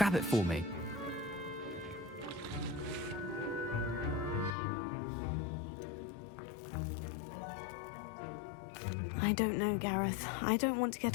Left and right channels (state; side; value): drops out; right; at 4.5 s